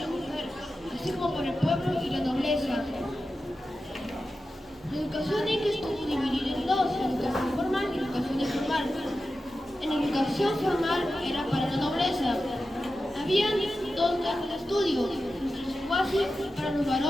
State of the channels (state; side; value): normal; both; correlation 0.92